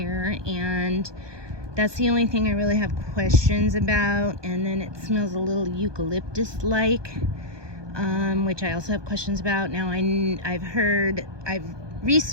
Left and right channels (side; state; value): left; late; 1.2 ms